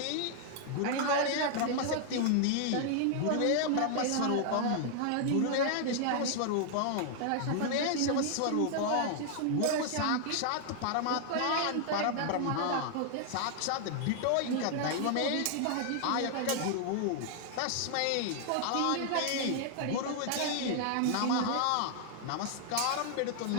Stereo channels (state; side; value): different; both; correlation 0.00